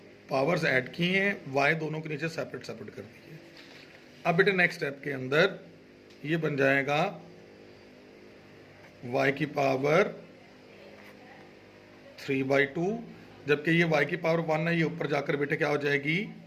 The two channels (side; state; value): both; identical; correlation 1.00